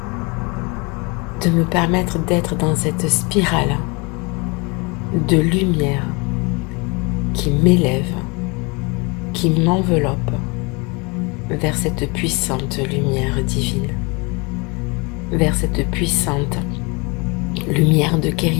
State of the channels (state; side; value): quieter; right; 28.9 dB